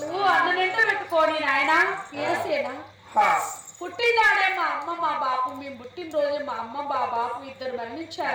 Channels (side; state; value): both; identical; correlation 1.00